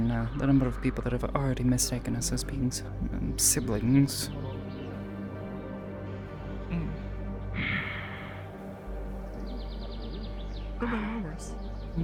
the number of people that have already mistaken us as being siblings.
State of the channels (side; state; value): both; identical; correlation 1.00